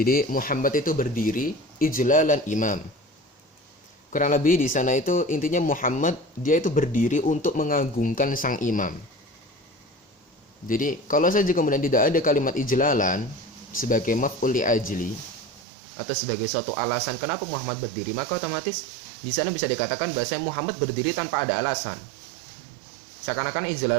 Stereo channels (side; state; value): left; drops out; at 15.6 s